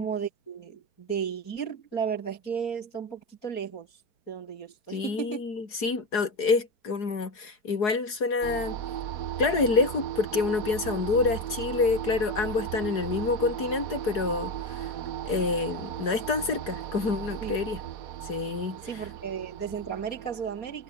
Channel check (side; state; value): right; late; 4.8 ms